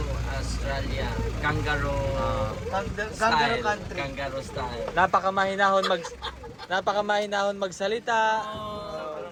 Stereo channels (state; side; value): identical; both; correlation 1.00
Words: Australia. Kangaroo Kangaroo style. country. Kangaroo style. Napakamahinahon magsalita.